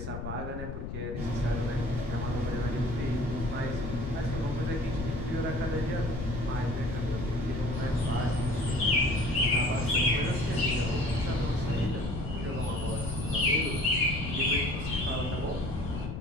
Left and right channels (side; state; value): left; noise; rumble, 6 dB below the sound